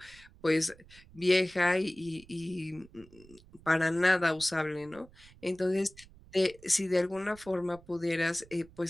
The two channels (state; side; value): noise; right; rumble, 24 dB below the sound